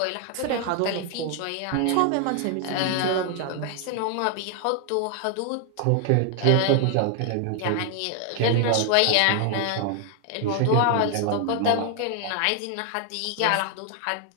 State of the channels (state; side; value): different; both; correlation 0.00